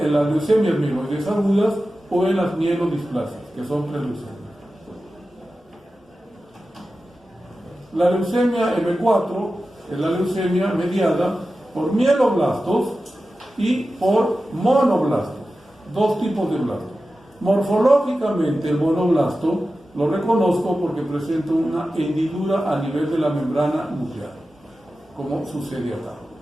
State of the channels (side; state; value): both; normal; correlation 0.94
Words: en las leucemias mieloides agudas o en las mielodisplasias, que son preleucemias. La leucemia M4 es la leucemia mediada por mieloblastos y por monoblastos, 2 tipos de blastos. Morfológicamente el monoblasto lo reconozco porque presenta una hendidura a nivel de la membrana nuclear, como sucede acá.